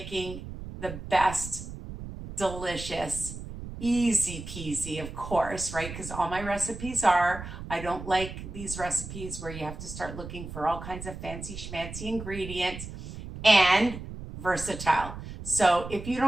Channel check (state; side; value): noise; right; rumble, 10 dB below the sound